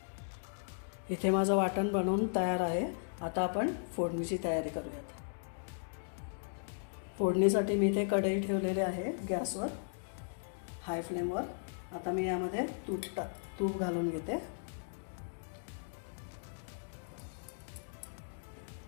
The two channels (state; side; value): silent; right; digital silence